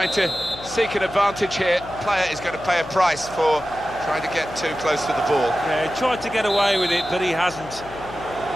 to seek an advantage here. Player is going to pay a price for trying to get too close to the ball. Yeah, he tried to get away with it, but he hasn't.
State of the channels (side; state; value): left; noise; hum, 17 dB below the sound